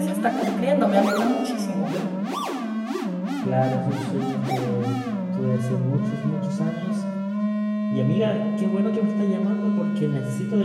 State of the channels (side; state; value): both; identical; correlation 1.00